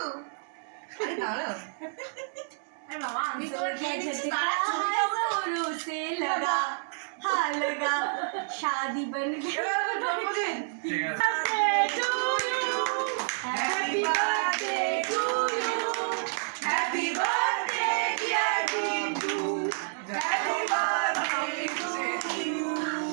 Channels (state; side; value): silent; left; digital silence